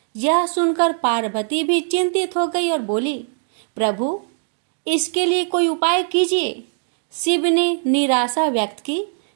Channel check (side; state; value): left; silent; 57 dB below the other